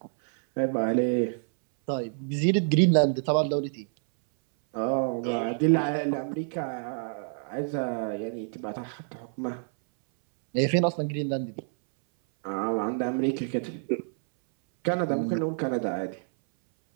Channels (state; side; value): silent; left; 60 dB below the other